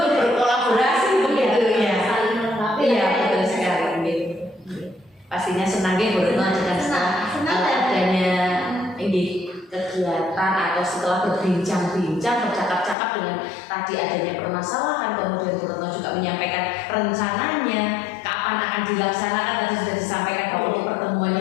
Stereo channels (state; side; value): drops out; right; at 13.0 s